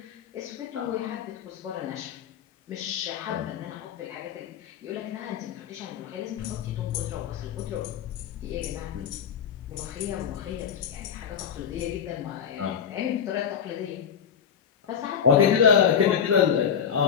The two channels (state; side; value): quieter; right; 7.9 dB